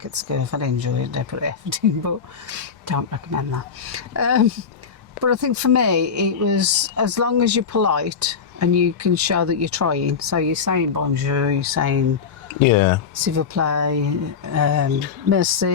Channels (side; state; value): right; quieter; 6.3 dB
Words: at school. If I didn't enjoy it, they put effort in, but don't recommend that. But I think for me, it was as long as you're polite and you can show that you're trying. So you're saying bonjour, you're saying s'il vous plaît,